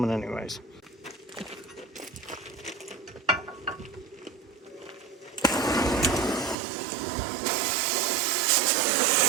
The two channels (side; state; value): left; drops out; at 6.6 s